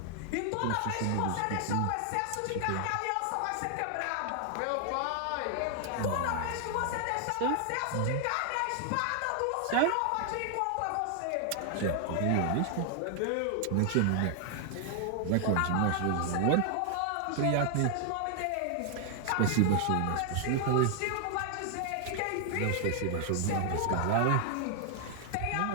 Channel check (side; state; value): both; different; correlation 0.00